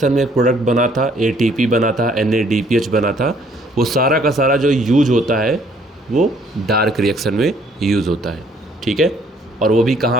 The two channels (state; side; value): normal; both; correlation 0.63